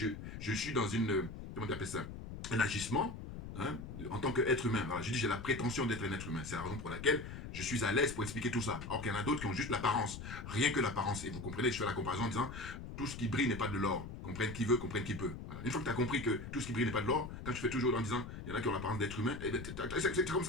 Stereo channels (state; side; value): noise; left; rumble, 9 dB below the sound